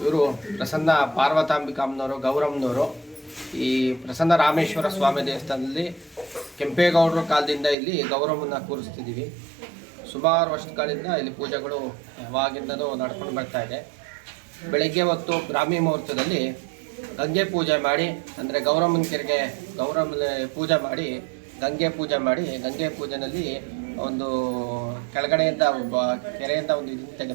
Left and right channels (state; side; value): drops out; left; at 7.8 s